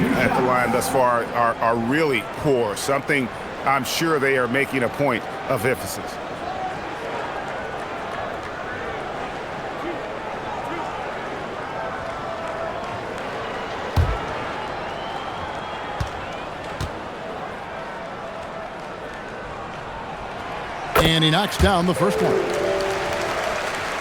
at the line thus far are really poor. Something I'm sure they are making a point of emphasis. And he knocks down the first one.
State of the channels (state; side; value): identical; both; correlation 1.00